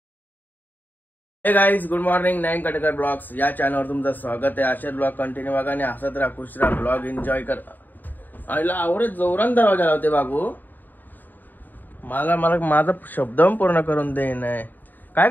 हे guys good morning. Nine Katekar blogs या चॅनलवर तुमचं स्वागत आहे. असेच ब्लॉग कंटिन्यू बघा आणि हसत राहा, खुश राहा, ब्लॉग एन्जॉय कर. आईला आवडत जोरान दरवाजा लावते बाबू. मला माझा शब्द पूर्ण करून दे. नाही काय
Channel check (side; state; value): right; late; 0.088 ms